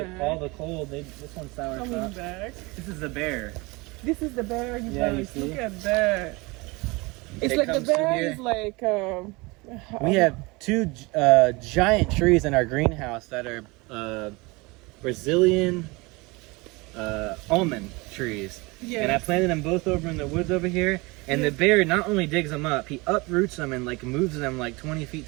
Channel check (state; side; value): quieter; left; 25.0 dB